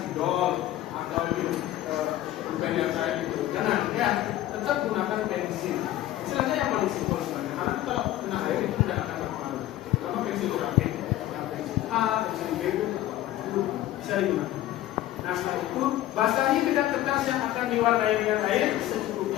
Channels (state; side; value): quieter; right; 14.1 dB